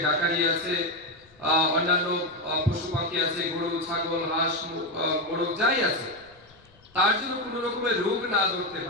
ডাকারি আছে, অন্যান্য পশু পাখি আছে, গরু, ছাগল, হাঁস, মোরগ যাই আছে, তার জন্য কোনো রকমের রোগ না ধরতে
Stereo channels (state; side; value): noise; left; rumble, 29 dB below the sound